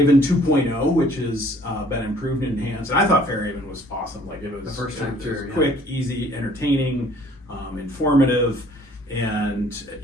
2.0, which has been improved and enhanced. And I thought Fairhaven was awesome. Like it was, the first time through, quick, easy, entertaining, informative, and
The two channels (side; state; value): both; normal; correlation 0.57